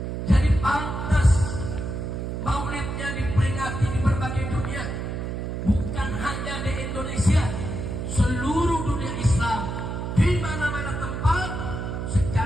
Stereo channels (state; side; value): noise; right; hum, 4 dB below the sound